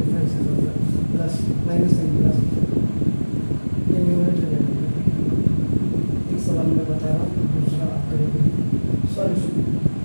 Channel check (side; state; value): both; inverted; correlation -1.00